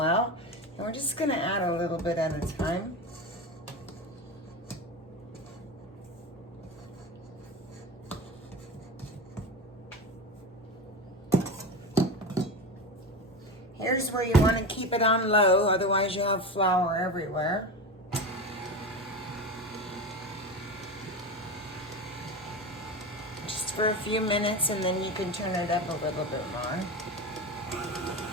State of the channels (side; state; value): both; normal; correlation 0.23